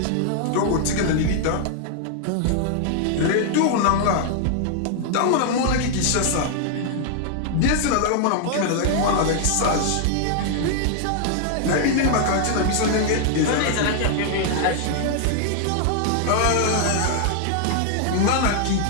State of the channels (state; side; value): different; both; correlation 0.00